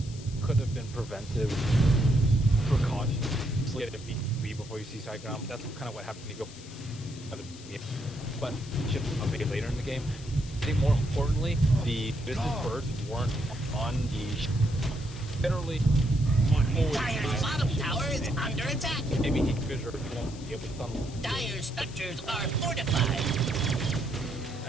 could have been prevented. Precaution. Just get a B before you see side ground. That's kind of what happened when you go. But ship I'll make it later in the game. I think more importantly, the business birds weren't on the literally. Dire's bottom tower is under attack. Maybe he could won't be able to tunnel. Dire's structures are fortified.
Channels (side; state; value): left; noise; hiss, 18 dB below the sound